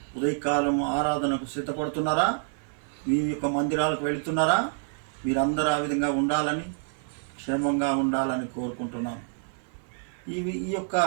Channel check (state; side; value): silent; left; 60 dB below the other